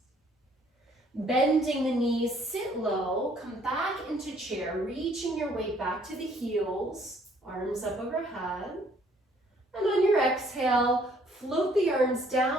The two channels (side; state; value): both; normal; correlation 0.62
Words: Bending the knees, sit low, come back into chair, reaching your weight back to the heels, arms up overhead. And on your exhale, float the arms